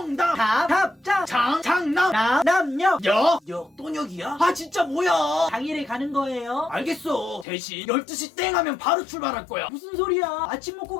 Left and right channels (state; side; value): drops out; right; at 7.5 s